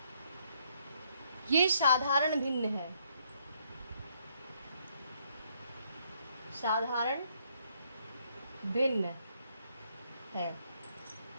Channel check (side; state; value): both; inverted; correlation -0.70